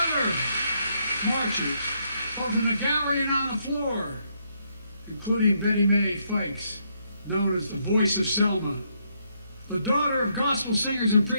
other marchers, both in the gallery and on the floor, including Betty Mae Fikes, known as the voice of Selma, the daughter of gospel singers and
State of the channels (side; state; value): both; inverted; correlation -0.75